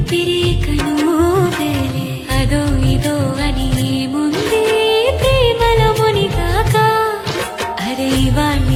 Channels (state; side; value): identical; both; correlation 1.00